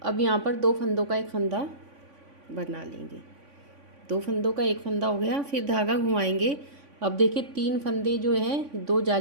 अब यहाँ पर 2 फंदों का एक फंदा बना लेंगे, 2 फंदों का एक फंदा हो गया, फिर धागा घुमाएंगे। अब देखिए 3 फंदे जो हैं, 2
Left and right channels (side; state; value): left; late; 3.5 ms